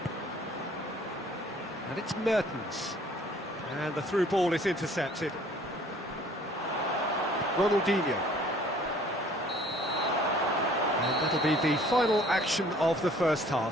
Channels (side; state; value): both; normal; correlation 0.55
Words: And it's Mertens. And the through ball is intercepted. Ronaldinho. And that'll be the final action of the first